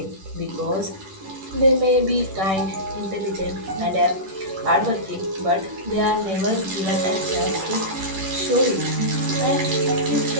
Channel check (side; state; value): left; late; 10 ms